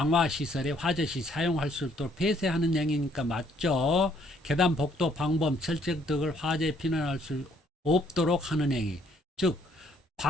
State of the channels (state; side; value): normal; both; correlation 0.66